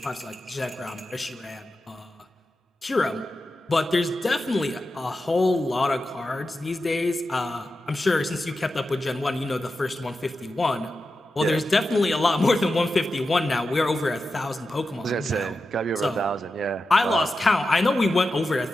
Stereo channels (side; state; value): both; normal; correlation 0.91